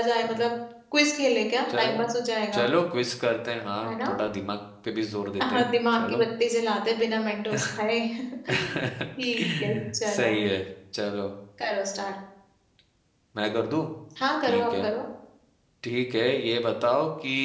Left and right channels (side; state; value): both; identical; correlation 1.00